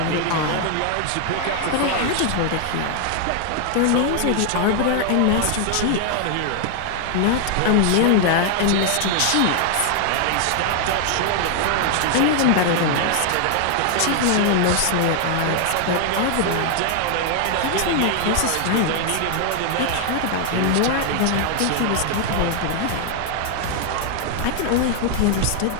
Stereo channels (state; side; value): different; both; correlation 0.00